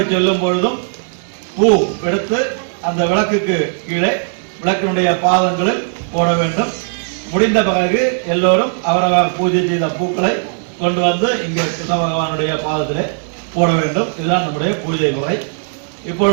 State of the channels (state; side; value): silent; left; 62 dB below the other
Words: சொல்லும் பொழுதும் பூ எடுத்து அந்த விளக்குக்கு கீழே விளக்கினுடைய பாதங்களில் போட வேண்டும். முடிந்த பிறகு எல்லோரும் அவரவர் பூஜை செய்த பூக்களை கொண்டு வந்து இங்கே கிருஷ்ண பகவானுடைய பாதத்திலே போட வேண்டும். இதுதான் நம்முடைய பூஜை முறை.